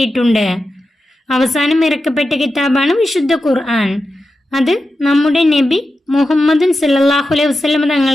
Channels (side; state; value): both; normal; correlation 0.91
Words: അവസാനം ഇറക്കപ്പെട്ട കിതാബാണ് വിശുദ്ധ ഖുർആൻ. അത് നമ്മുടെ നബി മുഹമ്മദ് സല്ലല്ലാഹു അലൈഹി വസല്ലം